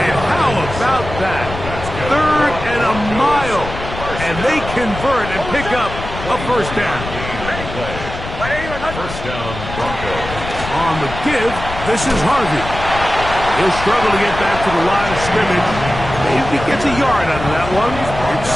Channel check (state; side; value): noise; left; rumble, 9 dB below the sound